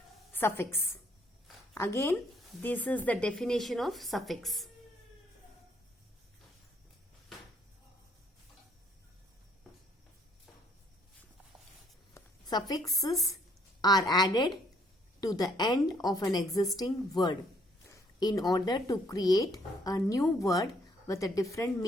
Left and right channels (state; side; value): normal; both; correlation 0.66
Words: Suffix. Again, this is the definition of suffix. Suffixes are added to the end of an existing word in order to create a new word with a different